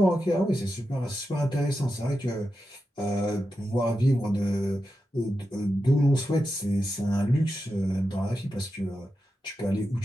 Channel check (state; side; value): normal; both; correlation 0.89